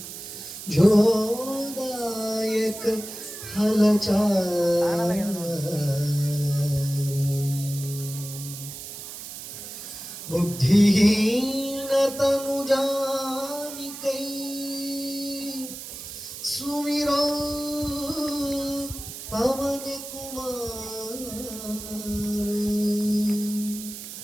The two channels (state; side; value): noise; right; hiss, 10 dB below the sound